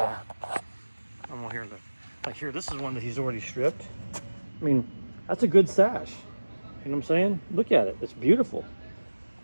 I'm here, like here, this is one that he's already stripped. I mean, that's a good sash. You know what I'm saying? Look at it, it's beautiful.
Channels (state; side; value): inverted; both; correlation -1.00